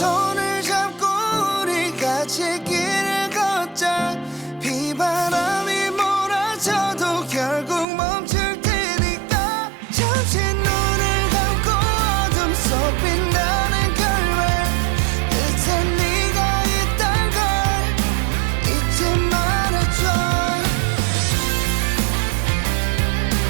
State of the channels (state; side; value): drops out; left; at 7.9 s